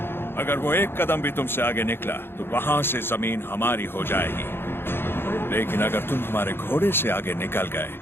अगर वो एक कदम भी तुमसे आगे निकला तो वहां से जमीन हमारी हो जाएगी, लेकिन अगर तुम हमारे घोड़े से आगे निकल गए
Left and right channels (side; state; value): right; late; 0.11 ms